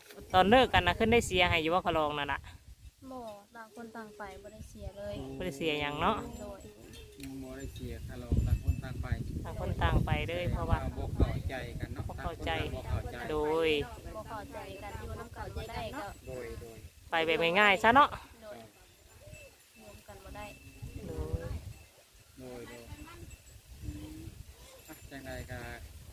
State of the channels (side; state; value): both; identical; correlation 1.00